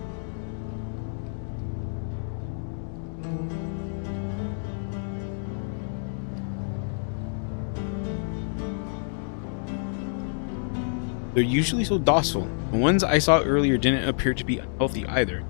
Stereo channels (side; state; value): right; silent; digital silence